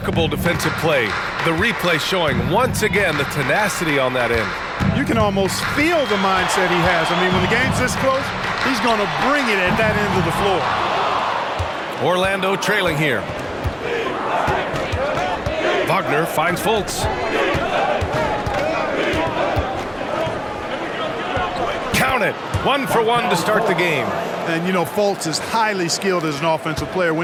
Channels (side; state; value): both; identical; correlation 1.00